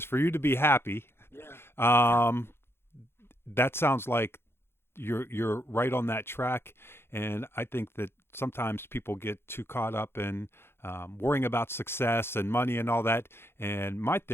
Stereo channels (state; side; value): late; right; 0.11 ms